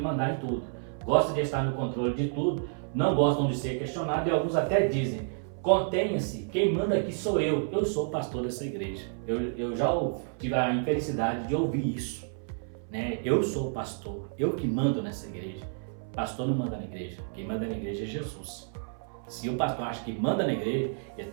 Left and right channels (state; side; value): silent; left; 58 dB below the other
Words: em tudo, gostam de estar no controle de tudo, não gostam de ser questionados e alguns até dizem, Contenha-se, quem manda aqui sou eu sou o pastor dessa igreja. Eu já tive a infelicidade de ouvir isso, né? Eu sou o pastor, eu que mando nessa igreja. Pastor não manda na igreja, quem manda na igreja é Jesus. Se o pastor acha que manda na igreja, ele